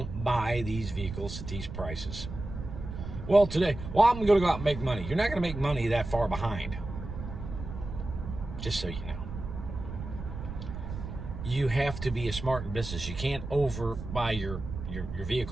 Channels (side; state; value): right; noise; rumble, 8 dB below the sound